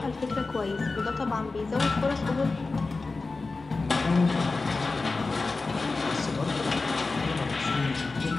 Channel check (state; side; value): quieter; right; 3.7 dB